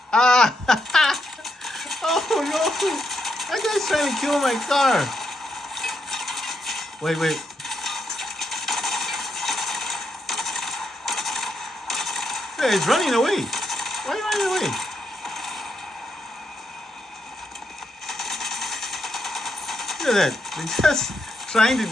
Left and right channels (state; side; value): normal; both; correlation 0.80